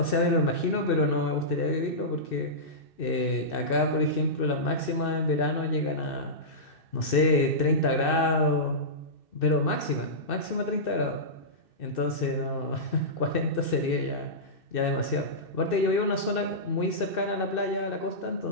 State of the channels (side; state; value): right; late; 2.6 ms